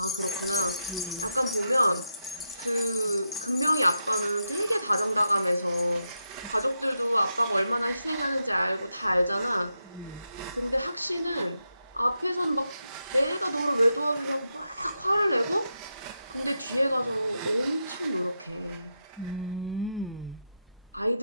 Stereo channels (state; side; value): inverted; both; correlation -0.85